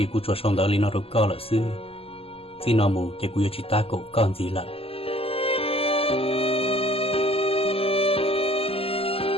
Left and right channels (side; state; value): right; late; 0.28 ms